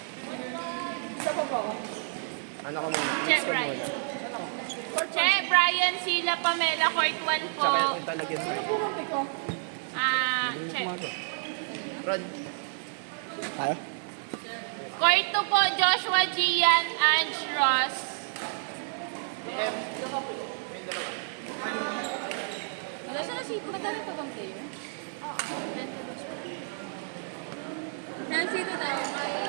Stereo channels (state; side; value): silent; left; 55 dB below the other